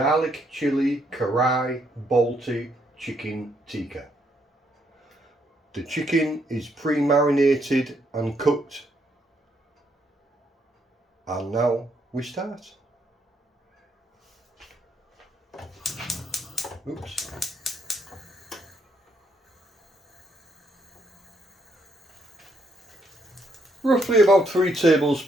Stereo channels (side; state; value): both; normal; correlation 0.74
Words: chili Korai Balti chicken tikka. The chicken is pre-marinated and cooked. And now we start. Oops. Roughly about 3